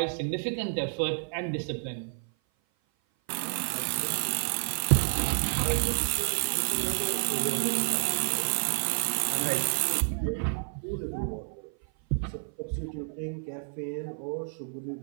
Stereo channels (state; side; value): silent; left; 55 dB below the other